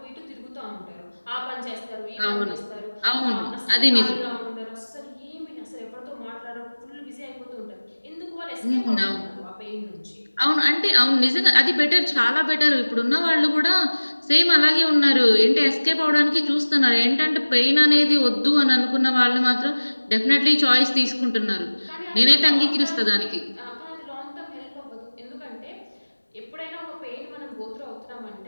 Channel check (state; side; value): inverted; both; correlation -1.00